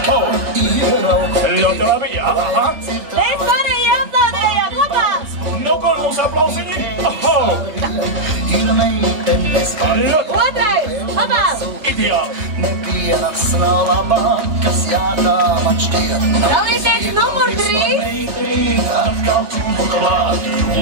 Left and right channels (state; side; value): late; left; 3.3 ms